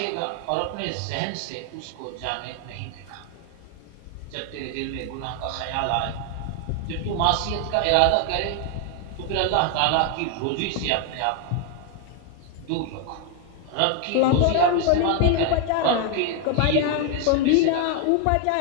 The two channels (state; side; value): different; both; correlation 0.01